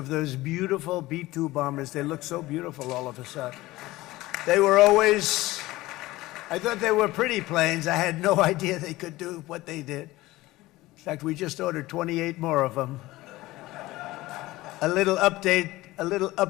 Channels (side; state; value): right; quieter; 18.4 dB